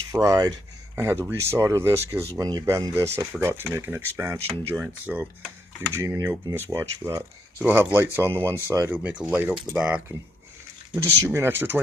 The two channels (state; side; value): normal; both; correlation 0.76